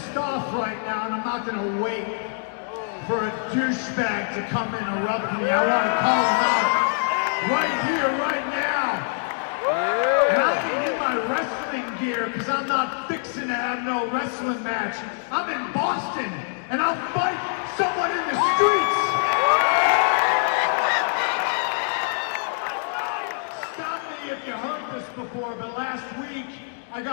off right now, and I'm not gonna wait for a douchebag to come interrupt me. I want to call him out right here, right now. And I ain't in my wrestling gear because I'm not fixing to have no wrestling match. I'm in Boston, and I'll fight someone in the streets. Stop me if you heard this before, but last week I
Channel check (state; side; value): silent; right; digital silence